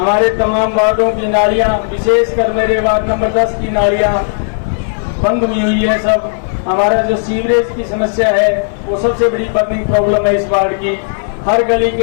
तमाम वार्डों की नालियां, विशेषकर मेरे वार्ड नंबर 10 की नालियां बंद हुई है। सब हमारा जो सीवरेज की समस्या है वो सबसे बड़ी बर्निंग प्रॉब्लम है इस वार्ड की। हर गली के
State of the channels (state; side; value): silent; right; digital silence